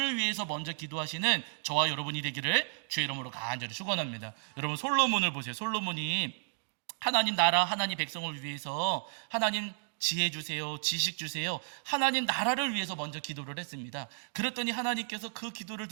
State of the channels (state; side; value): silent; left; digital silence